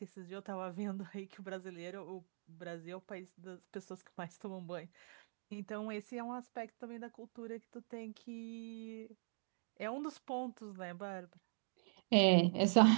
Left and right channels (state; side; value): silent; left; digital silence